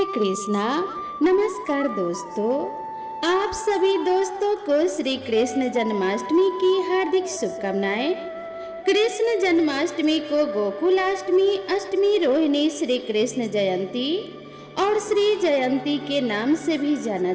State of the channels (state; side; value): identical; both; correlation 1.00